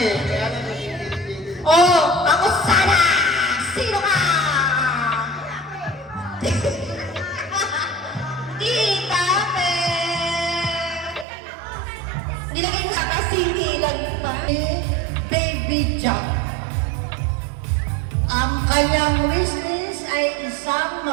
Oh, ako sana! Sino ka? Tita Pe! Nilagay mo sa kasingilan pa. Baby Jack. Ang kanyang wishlist ay isang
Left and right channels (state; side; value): drops out; left; at 11.2 s